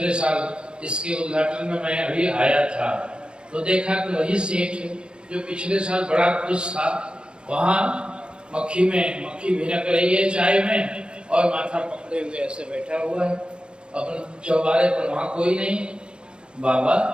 साल इसके उद्घाटन में मैं अभी आया था, तो देखा कि वही सेठ जो पिछले साल बड़ा खुश था, वहाँ मक्खी भिनक रही है चाय में, और माथा पकड़े हुए ऐसे बैठा हुआ है अपने चौबारे पर, वहाँ कोई नहीं। बाबा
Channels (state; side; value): late; left; 0.053 ms